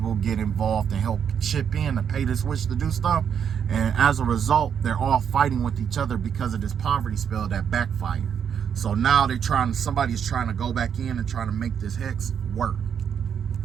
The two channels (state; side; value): quieter; left; 7.9 dB